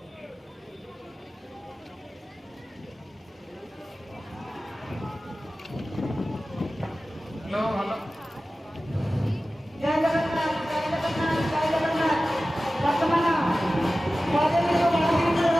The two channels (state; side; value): normal; both; correlation 0.96